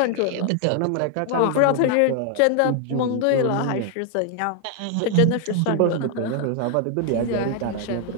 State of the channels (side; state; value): both; different; correlation 0.00